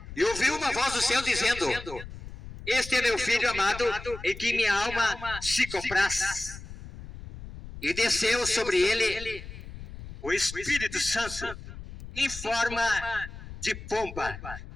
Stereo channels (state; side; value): noise; left; rumble, 13 dB below the sound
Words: e ouviu uma voz do céu dizendo: este é meu filho amado, em que minha alma se compraz. E desceu sobre ele o Espírito Santo, em forma de pomba,